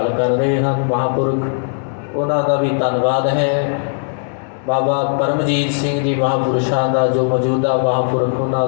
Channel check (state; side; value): silent; right; 68 dB below the other